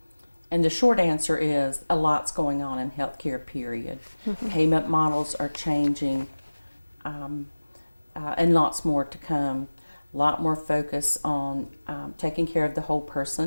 the short answer is a lot's going on in healthcare, period. Payment models are changing, and lots more to come. A lot more focus on taking care of the whole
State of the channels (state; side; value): inverted; both; correlation -1.00